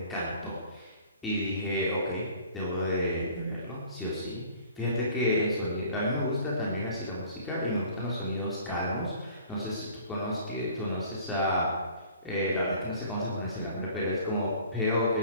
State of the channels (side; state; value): both; inverted; correlation -0.50